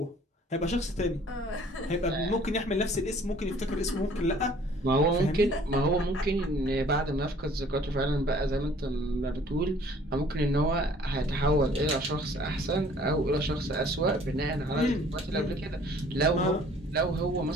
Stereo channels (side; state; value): both; normal; correlation 0.55